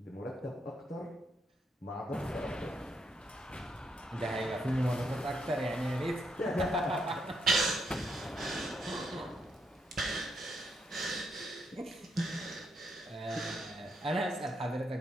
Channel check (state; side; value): normal; both; correlation 0.77